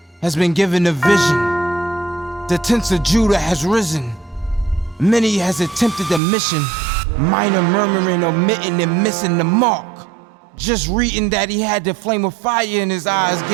has been given a vision. The tents of Judah has risen. Many has attempted the mission, minor murmuring, omitting, and missing the mark. Just reading that he had the flame of fire in his eyes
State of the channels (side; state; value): left; drops out; at 6.2 s